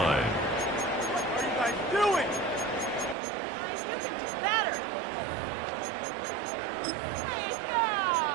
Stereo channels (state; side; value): drops out; left; at 3.2 s